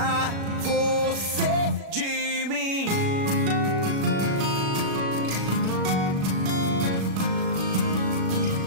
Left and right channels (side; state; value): left; late; 36 ms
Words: você de mim.